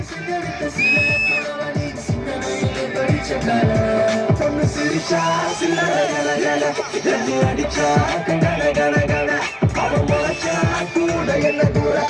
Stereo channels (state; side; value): identical; both; correlation 1.00